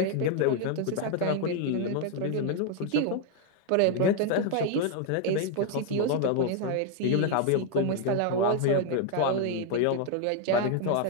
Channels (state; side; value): different; both; correlation 0.01